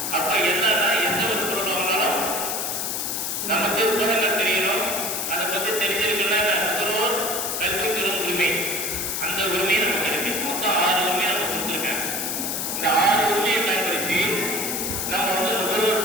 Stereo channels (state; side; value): noise; left; hiss, 2 dB below the sound